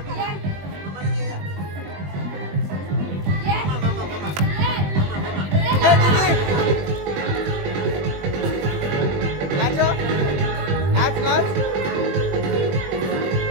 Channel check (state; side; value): late; left; 20 ms